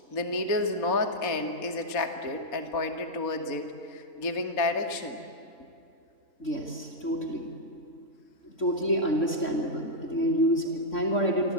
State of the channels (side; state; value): right; late; 3.6 ms